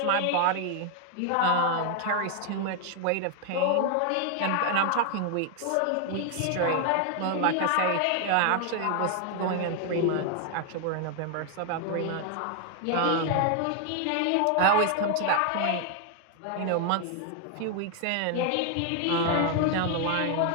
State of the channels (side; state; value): both; different; correlation 0.00